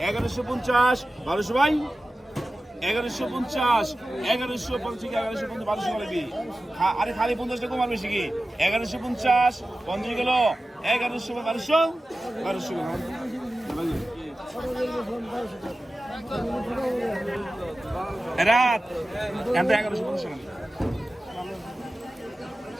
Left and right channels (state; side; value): normal; both; correlation 0.95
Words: 1150 1200 ভাই 1150 1200 গেল আরে খালি 50 টাকা কমার বেশি কি 1150 50 গেল 1200 গেল রাত এত 1150 টাকা